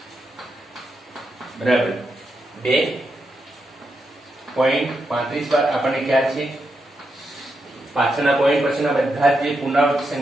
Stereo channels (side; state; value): both; normal; correlation 0.84